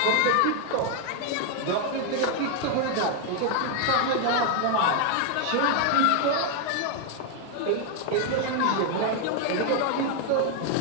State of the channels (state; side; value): different; both; correlation 0.00